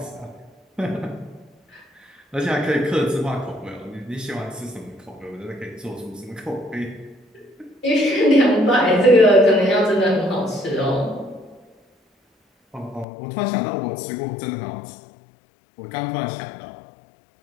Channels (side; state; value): right; drops out; at 13.1 s